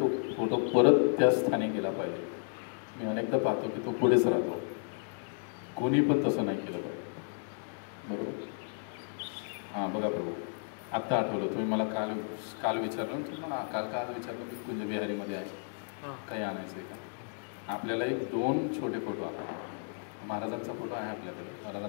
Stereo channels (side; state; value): right; silent; 56 dB below the other